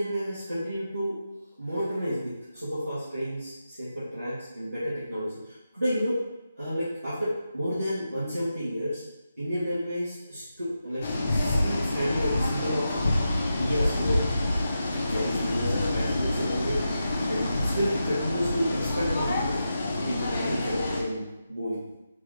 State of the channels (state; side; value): inverted; both; correlation -0.88